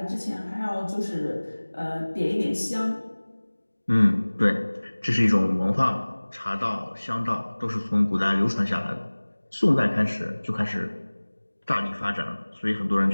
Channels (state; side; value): inverted; both; correlation -1.00